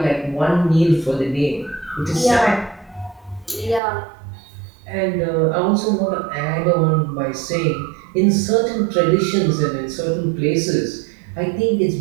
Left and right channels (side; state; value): left; drops out; at 3.8 s